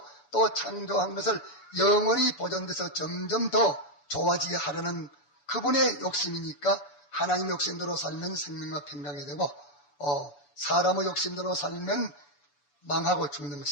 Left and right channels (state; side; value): late; right; 6.9 ms